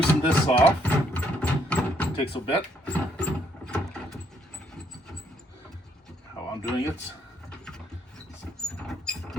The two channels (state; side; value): normal; both; correlation 0.70